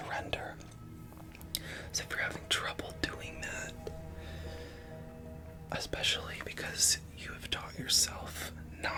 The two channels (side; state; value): both; identical; correlation 1.00